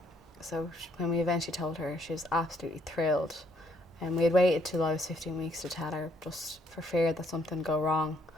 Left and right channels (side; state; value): both; normal; correlation 0.68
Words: So when we eventually told her, she was absolutely thrilled. And we had waited till I was 15 weeks to tell her, just for fear that something would go wrong.